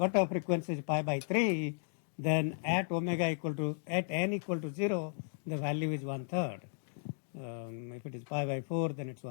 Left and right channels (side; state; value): right; silent; digital silence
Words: frequency is pi by 3, then at n equal to 0, the value is 1/3. If it is pi by 4, then it's